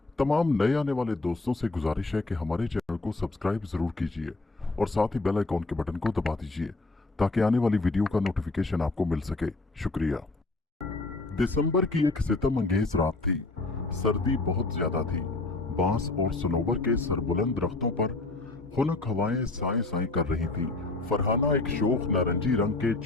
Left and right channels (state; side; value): quieter; right; 3.1 dB